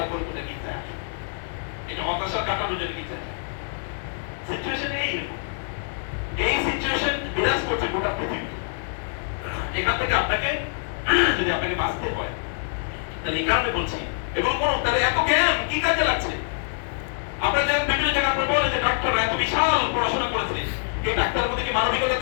কোথায় গির্জা আসে। এটা হতাশা কাটানোর জন্য গির্জা। সিচুয়েশন এইরকম। এই সিচুয়েশন বিরাজ করছে গোটা পৃথিবী। এখান থেকে আপনাকে যদি আপনাকে বাঁচতে হয়, তাহলে এই কারণে বলছি এগুলো কোনো, তাহলে এত জ্ঞান কি কাজে লাগছে? আপনারা যে বিভিন্ন জায়গায় আপনি বলেন যে ডাক্তাররা এত বিশাল পড়াশোনা করেছে, এই ডাক্তারের প্রতি কি মানবিকতা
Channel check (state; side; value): silent; right; digital silence